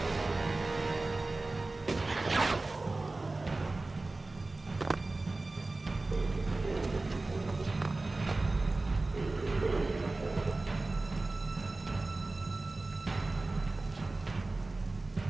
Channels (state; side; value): quieter; left; 3.2 dB